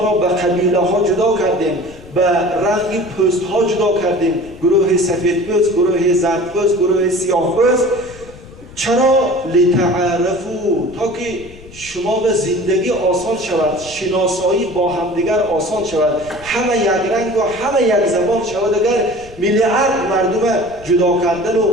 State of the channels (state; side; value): noise; left; rumble, 19 dB below the sound